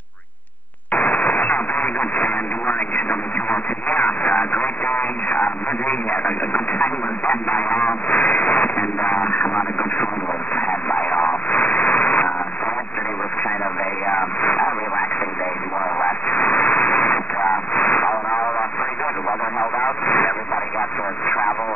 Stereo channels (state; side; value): late; right; 0.080 ms